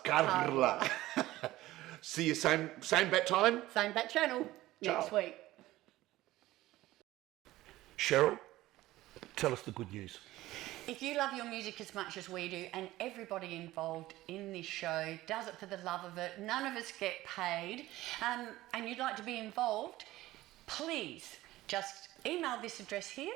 See you same bat time. Same bat channel next Ciao. week. Cheryl, tell us the good news. If you love your music as much as we do, and everybody involved in this show does it for the love of it, none of us get paid, and you'd like to be involved, please just email this address here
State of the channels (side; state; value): left; quieter; 16.7 dB